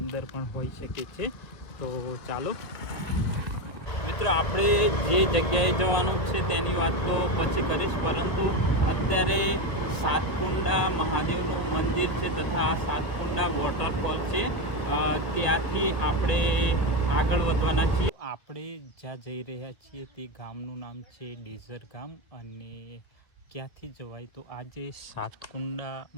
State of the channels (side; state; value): right; late; 1.8 ms